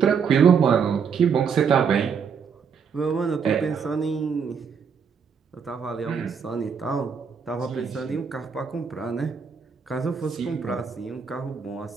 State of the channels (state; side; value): quieter; left; 6.5 dB